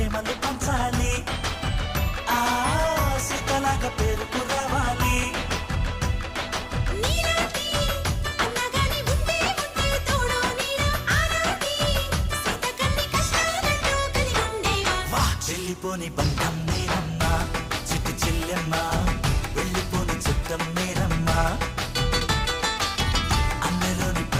పంచాలి ఆ సీతలాగా పేరుకు రావాలి వెళ్ళిపోని బంధం నేనమ్మా చిట్టి చెల్లెమ్మ వెళ్ళిపోని చిత్తం నేనమ్మా అన్నలోని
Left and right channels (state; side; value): identical; both; correlation 1.00